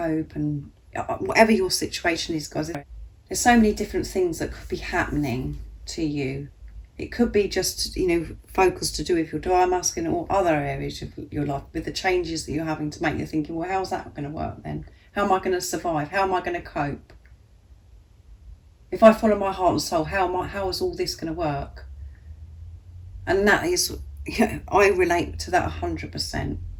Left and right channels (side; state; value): both; identical; correlation 1.00